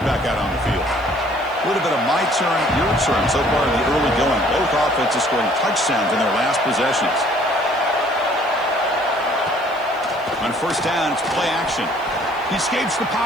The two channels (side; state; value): left; noise; hiss, 28 dB below the sound